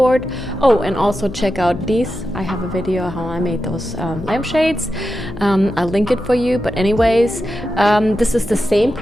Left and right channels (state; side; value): noise; left; hum, 13 dB below the sound